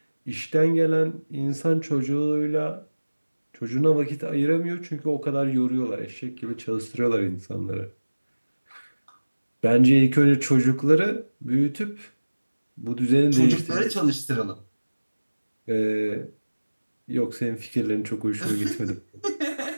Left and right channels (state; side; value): inverted; both; correlation -1.00